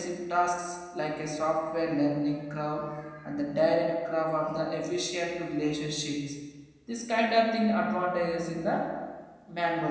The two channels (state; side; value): identical; both; correlation 1.00